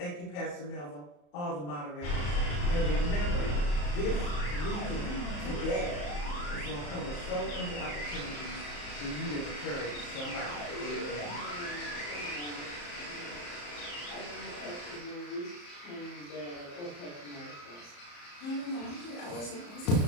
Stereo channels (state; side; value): late; right; 34 ms